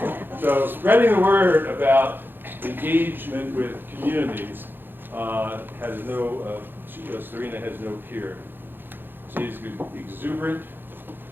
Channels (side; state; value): left; late; 0.098 ms